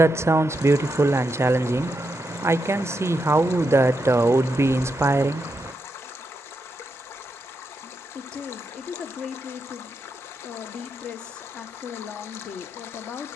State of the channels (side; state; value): both; normal; correlation 0.84